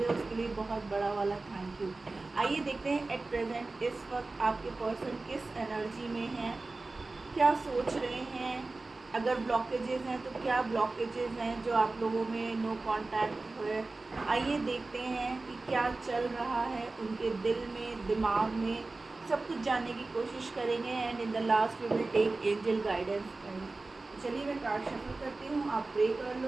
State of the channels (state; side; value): quieter; left; 3.4 dB